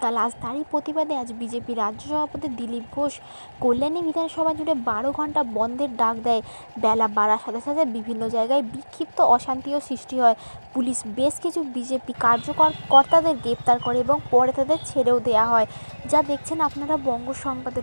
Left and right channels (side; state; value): both; inverted; correlation -1.00